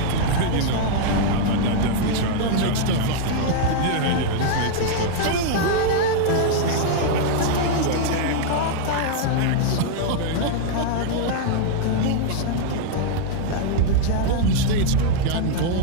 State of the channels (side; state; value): both; different; correlation -0.01